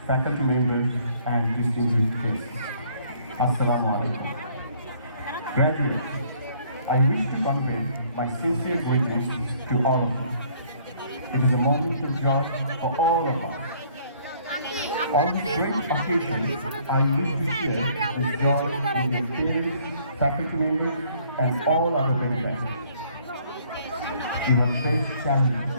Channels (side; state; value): both; inverted; correlation -0.61